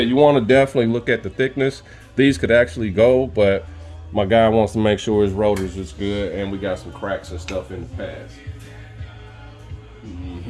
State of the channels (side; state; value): both; identical; correlation 1.00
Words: you want to definitely look at the thickness. These could actually go, but my guy wants to make sure his rotors is good, and we got some cracks and stuff in the pads.